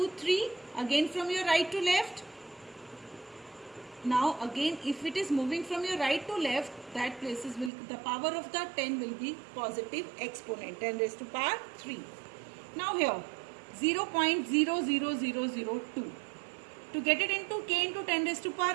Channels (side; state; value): left; drops out; at 7.7 s